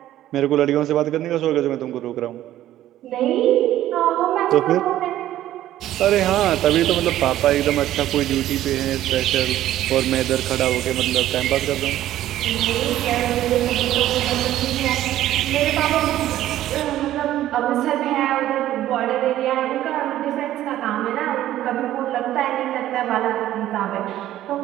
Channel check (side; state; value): left; quieter; 13.3 dB